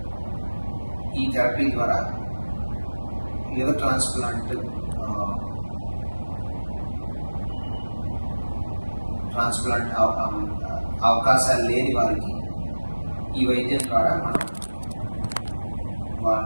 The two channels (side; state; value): both; inverted; correlation -1.00